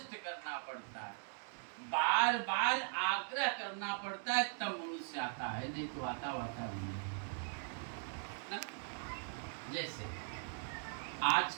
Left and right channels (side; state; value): left; silent; 51 dB below the other